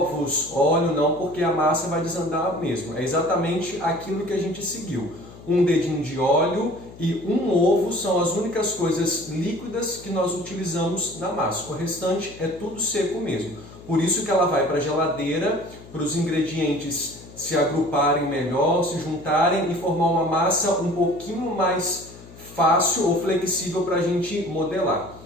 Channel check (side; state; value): left; noise; hum, 19 dB below the sound